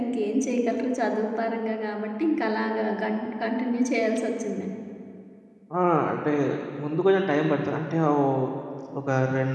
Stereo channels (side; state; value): both; identical; correlation 1.00